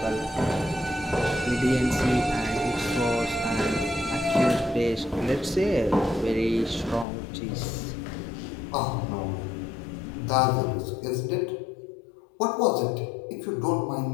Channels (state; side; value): drops out; right; at 7.1 s